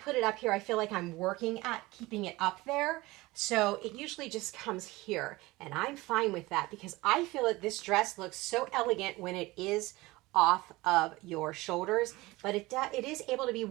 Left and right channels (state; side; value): quieter; left; 20.6 dB